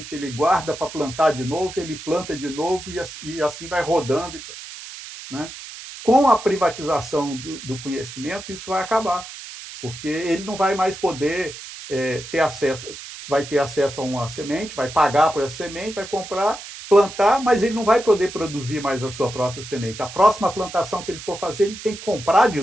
ele guarda para plantar de novo, ele planta de novo e assim vai rodando. Né? Com a privatização do conhecimento, isso vai acabar, porque ele não vai mais poder ter acesso, vai ter acesso a uma semente, vai pagar por essa semente, vai comprar, plantar, mas ele não vai poder produzir mais a sua própria semente. A próxima plantação que ele for fazer, ele tem que comprar de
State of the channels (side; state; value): right; noise; hiss, 13 dB below the sound